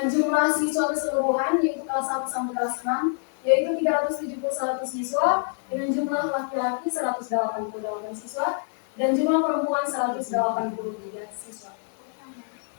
jumlah siswa keseluruhan yaitu kelas 1 sampai kelas 6 yaitu 371 siswa, dengan jumlah laki-laki 188 siswa dan jumlah perempuan 183 siswa.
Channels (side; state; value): right; silent; 55 dB below the other